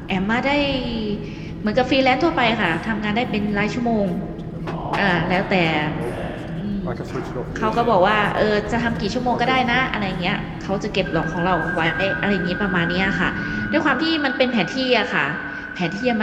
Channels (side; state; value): both; identical; correlation 1.00